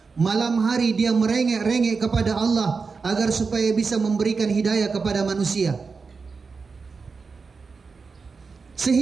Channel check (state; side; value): quieter; left; 4.8 dB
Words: Malam hari dia merengek-rengek kepada Allah agar supaya bisa memberikan hidayah kepada manusia.